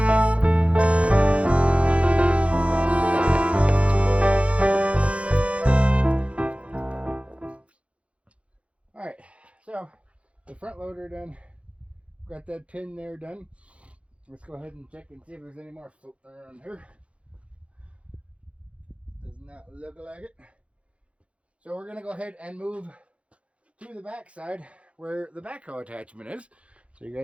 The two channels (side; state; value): left; late; 0.062 ms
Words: Alright, so the front loader done. Got that pin there done. Let's go ahead and check and see if there's any more floating around here. Does not look like it. So we're going to go ahead and move to the back side where the backhoe attachment is. So you